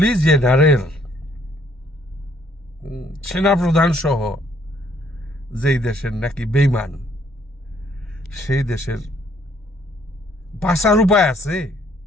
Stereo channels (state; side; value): normal; both; correlation 0.66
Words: জেনারেল, সেনাপ্রধান সহ, যেই দেশের নাকি বেইমান, সেই দেশের বাঁচার উপায় আছে?